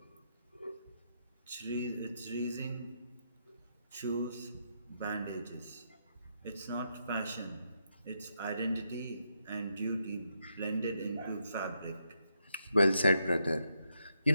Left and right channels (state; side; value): inverted; both; correlation -0.80